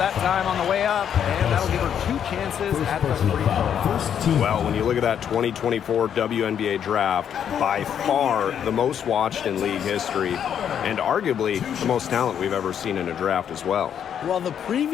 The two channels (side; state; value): right; quieter; 8.8 dB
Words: time on the way up. And that'll give her 2 chances at the free throw. Well, when you look at that 2024 WNBA draft, by far the most watched in league history, and arguably the most talent we've ever seen in a draft as well. Well, the